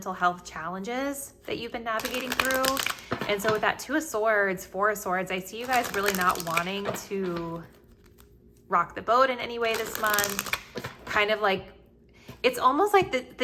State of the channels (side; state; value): both; identical; correlation 1.00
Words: health challenges that you've been navigating through. And so with that 2 of Swords, 4 of Swords, I see you guys really not wanting to rock the boat in any way this month. Kind of like, it's almost like